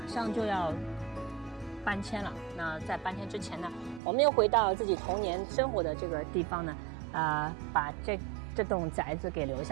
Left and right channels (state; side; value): drops out; left; at 4.0 s